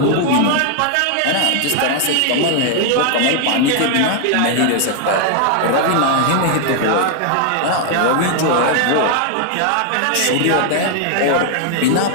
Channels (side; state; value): both; different; correlation 0.00